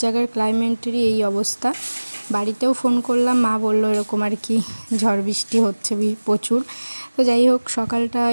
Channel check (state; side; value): inverted; both; correlation -1.00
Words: জায়গার ক্লাইমেটেরই এই অবস্থা। বাড়িতেও ফোন করলাম, মা বললো এরকম আর কি ঝড় বৃষ্টি হচ্ছে প্রচুর। তো যাই হোক, সকালটা